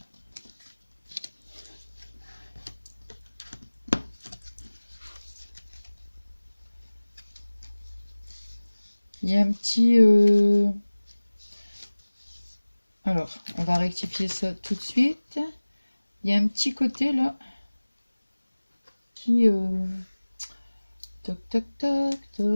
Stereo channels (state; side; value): inverted; both; correlation -1.00